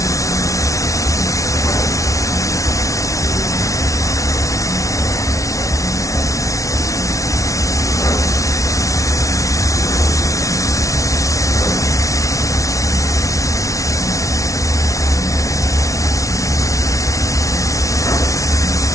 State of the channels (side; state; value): right; late; 0.16 ms